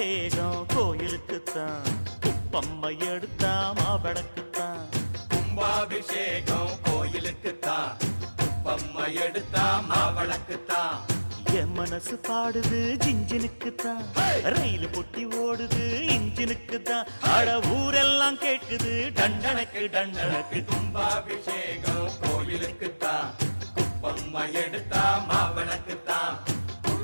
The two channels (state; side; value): inverted; both; correlation -1.00